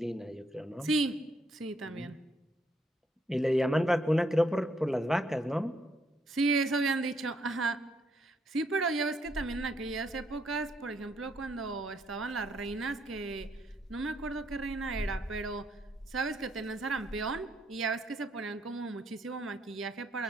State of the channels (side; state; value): both; normal; correlation 0.72